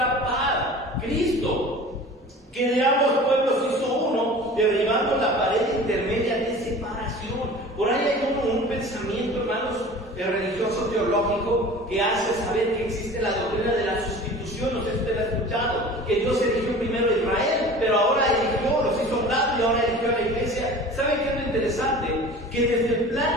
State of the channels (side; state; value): both; normal; correlation 0.41